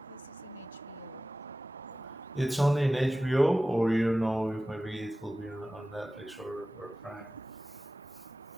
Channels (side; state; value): both; normal; correlation 0.96